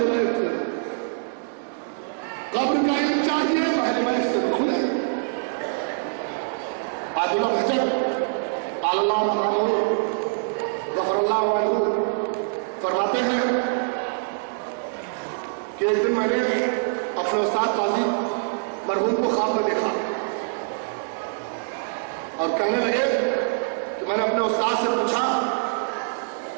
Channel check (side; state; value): left; silent; digital silence